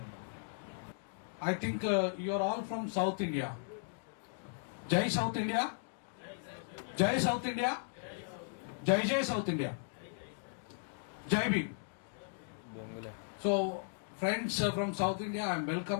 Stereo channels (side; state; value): right; silent; digital silence